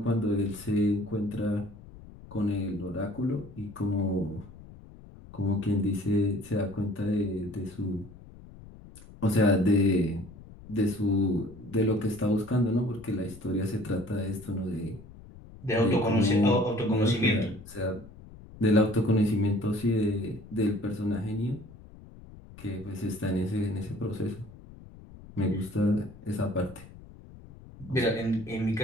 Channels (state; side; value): noise; left; rumble, 18 dB below the sound